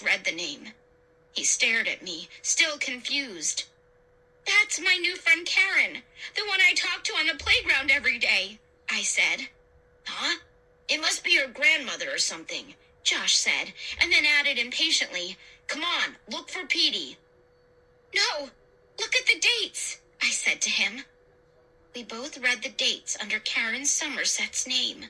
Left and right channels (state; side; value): identical; both; correlation 1.00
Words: read the name. He stared at me, still confused. That's my new friend Karen, the one I talk to on the playground every day, I said. Huh? It must be your grandmother or something, Josh said, and then added impatiently, Come on, look for Petey. No, look at the dates, I said to him. We both read the dates under Karen Somerset's name.